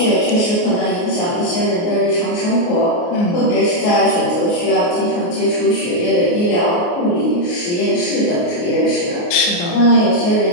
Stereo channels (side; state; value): right; late; 29 ms